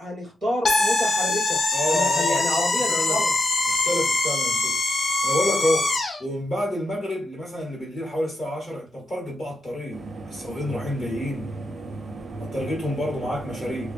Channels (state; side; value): normal; both; correlation 0.84